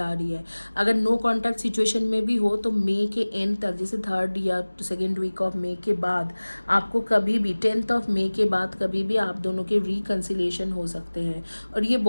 आ रही है। अगर नो कॉन्टैक्ट सिचुएशन में भी हो तो मई के एंड तक, जैसे 3rd या 2nd वीक ऑफ मई के बाद आपको कभी भी 10th ऑफ मई के बाद कभी भी आप दोनों के रिकन्सिलिएशन हो सकते हैं। और ये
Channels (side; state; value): both; inverted; correlation -1.00